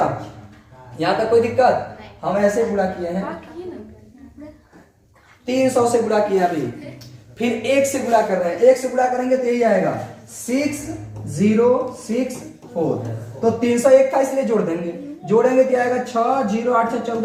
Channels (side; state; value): both; identical; correlation 1.00